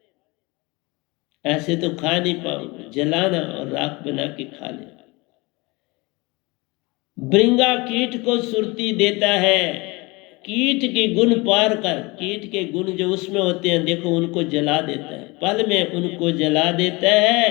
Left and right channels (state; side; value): quieter; right; 24.9 dB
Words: ऐसे तो खा नहीं पाओगे, जलाना और राख बना के खा लेना। भृंगा कीट को सुरती देता है, कीट के गुण पार कर, कीट के गुण जो उसमें होते हैं देखो, उनको जला देता है, पल में उनको जला देता है,